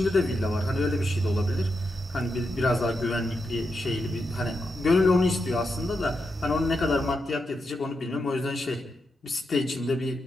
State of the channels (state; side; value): normal; both; correlation 0.85